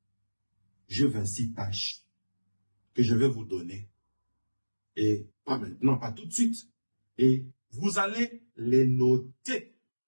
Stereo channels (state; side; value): inverted; both; correlation -1.00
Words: Je 26 tâches que je vais vous donner. Et pas maintenant, pas tout de suite. Et vous allez les noter.